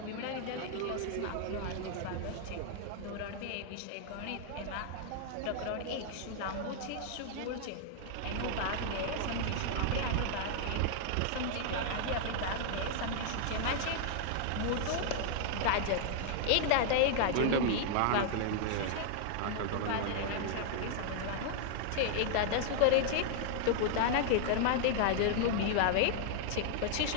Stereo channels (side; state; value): both; different; correlation -0.01